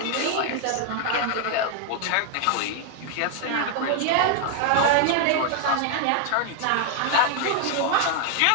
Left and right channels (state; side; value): different; both; correlation 0.00